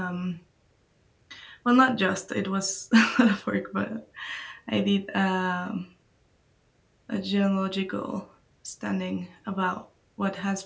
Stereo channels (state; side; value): identical; both; correlation 1.00